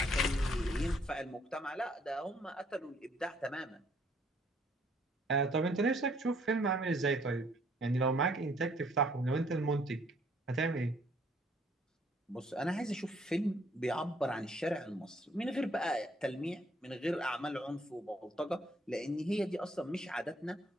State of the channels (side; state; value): both; normal; correlation 0.64